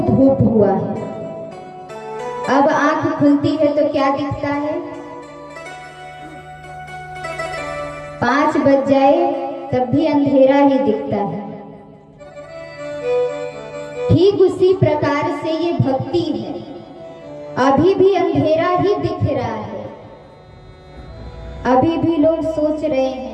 धूप हुआ है। अब आंख खुलती है तो क्या दिखता है? 5 बज जाए तब भी अंधेरा ही दिखता है। ठीक उसी प्रकार से ये भक्ति है, अभी भी अंधेरा ही दिख रहा है। अभी भी लोग सोच रहे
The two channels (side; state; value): both; identical; correlation 1.00